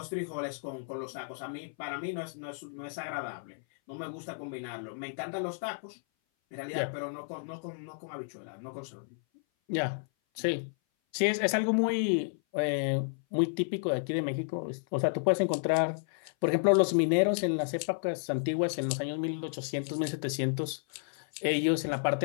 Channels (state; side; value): silent; right; 56 dB below the other